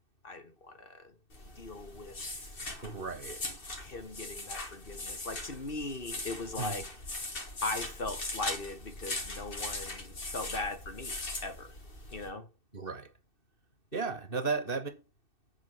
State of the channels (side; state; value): right; late; 2.6 ms